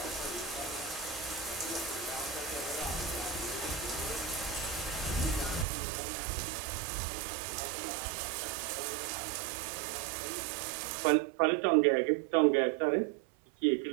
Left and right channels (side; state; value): left; drops out; at 5.7 s